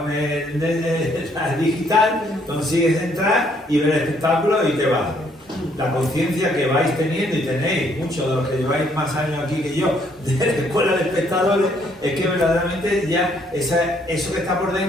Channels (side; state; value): both; normal; correlation 0.68